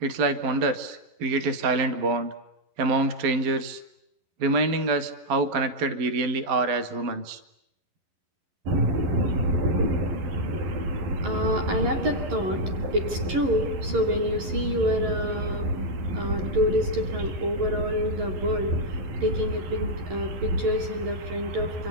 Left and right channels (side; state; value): left; late; 11 ms